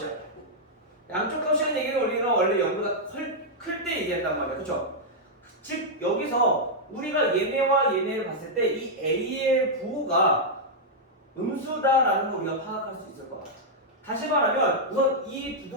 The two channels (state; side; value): normal; both; correlation -0.05